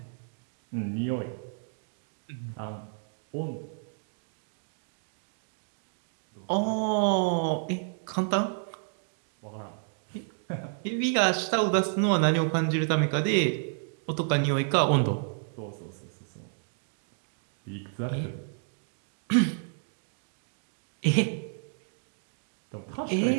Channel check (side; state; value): left; silent; digital silence